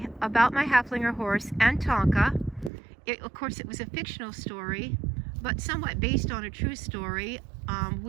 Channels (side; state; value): left; drops out; at 2.7 s